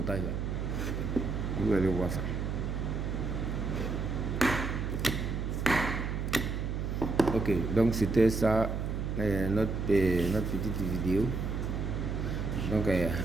là, vous allez voir ça. Ok, donc c'était ça, notre petite vidéo. Donc,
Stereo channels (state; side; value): noise; right; hum, 2 dB below the sound